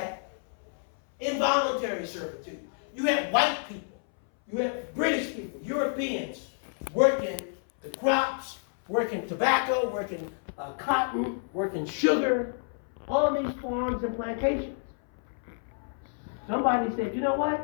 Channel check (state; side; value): silent; right; 58 dB below the other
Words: involuntary servitude. You had white people. You had British people, Europeans, working the crops, working tobacco, working cotton, working sugar, all these farms and plantations. Somebody said, you know